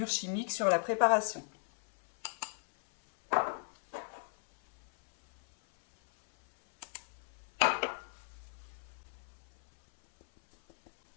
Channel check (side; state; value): right; silent; 54 dB below the other